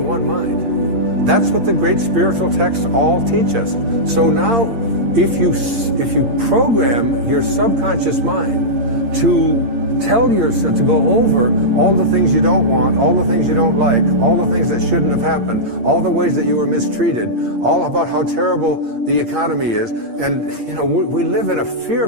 one mind. That's what the great spiritual texts all teach us. So now, if you program your subconscious mind to tell yourself, to go over all the things you don't want, all the things you don't like, all the things that shouldn't have happened, all the ways that you were mistreated, all about how terrible the economy is. And, you know, we live in a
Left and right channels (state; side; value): late; left; 8.7 ms